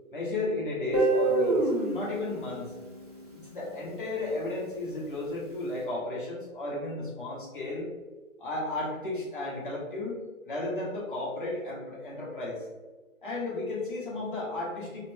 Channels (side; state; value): both; normal; correlation 0.33